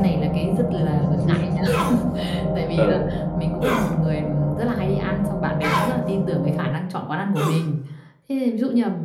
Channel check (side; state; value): both; identical; correlation 1.00